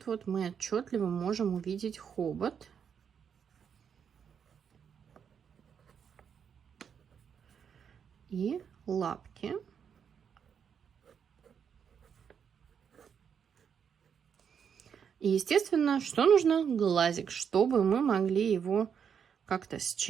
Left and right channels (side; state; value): left; quieter; 7.4 dB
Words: вот мы отчетливо можем увидеть хобот. И лапки. И, естественно, что нужно? Глазик, чтобы мы могли его как-то